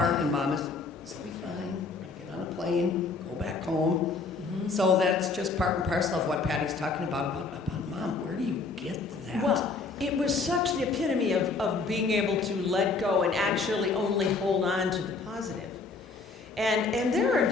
and Mom is, this'll be fine. We're going to get on a plane, go back home. Mm-hmm. So that's just part and parcel of what Patty's talking about Mom. Where do you get that? Well, it was such the epitome of being able to let go and actually only hold on to the positive. And there are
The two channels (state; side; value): quieter; right; 4.2 dB